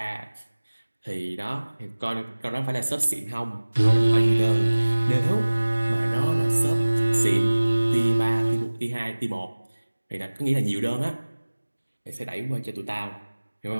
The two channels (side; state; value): both; inverted; correlation -1.00